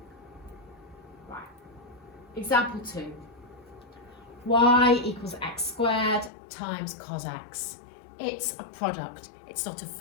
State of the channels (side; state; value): right; drops out; at 6.3 s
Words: Right. Example 2. Y equals x squared times cos x. It's a product. It's not a